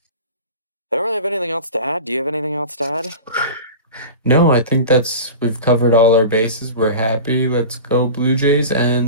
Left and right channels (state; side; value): inverted; both; correlation -0.33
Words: I don't really have anything else to add. Do you have anything else to add? No, I think we've covered all our bases. We're happy. Let's go Blue Jays,